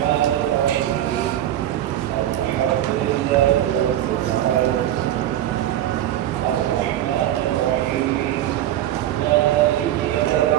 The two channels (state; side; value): quieter; left; 12.6 dB